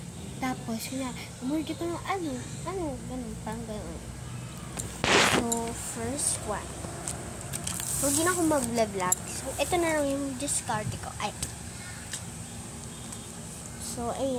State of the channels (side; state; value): both; identical; correlation 1.00